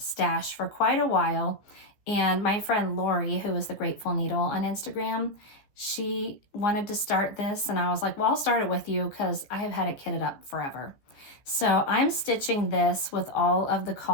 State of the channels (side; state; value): right; late; 14 ms